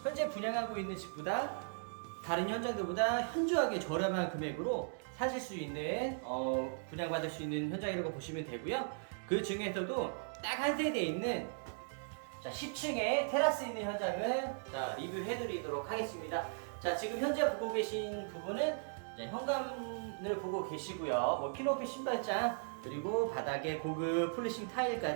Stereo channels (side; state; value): left; silent; digital silence